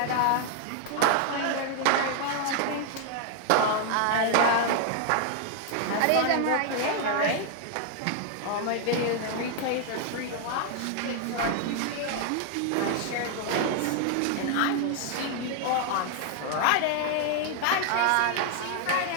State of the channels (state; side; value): different; both; correlation 0.00